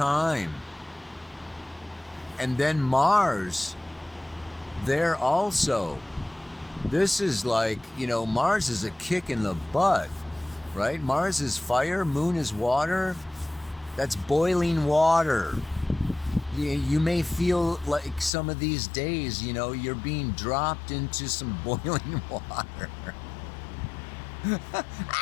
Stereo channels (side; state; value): right; drops out; at 18.3 s